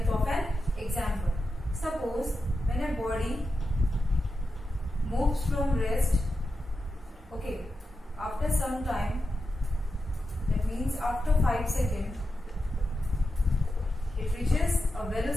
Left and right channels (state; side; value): normal; both; correlation 0.89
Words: of an example. Suppose when a body moves from rest, okay, after some time, that means after 5 seconds, it reaches a